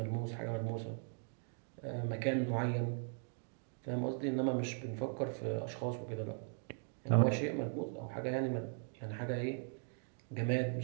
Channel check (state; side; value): silent; left; 52 dB below the other